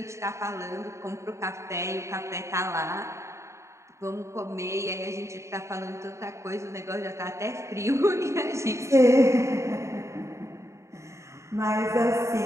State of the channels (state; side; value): late; left; 0.14 ms